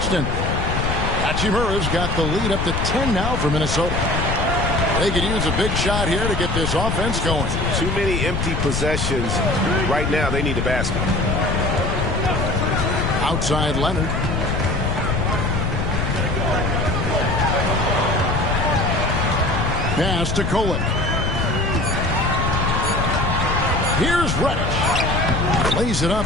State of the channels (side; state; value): left; noise; rumble, 1 dB below the sound